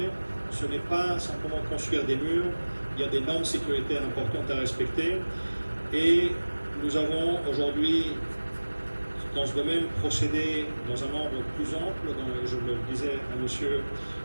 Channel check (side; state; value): both; inverted; correlation -1.00